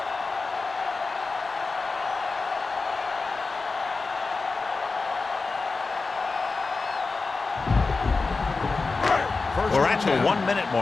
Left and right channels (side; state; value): right; quieter; 4.0 dB